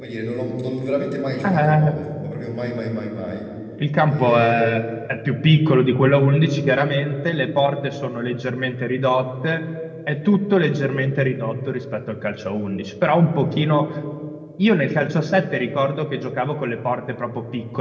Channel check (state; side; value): identical; both; correlation 1.00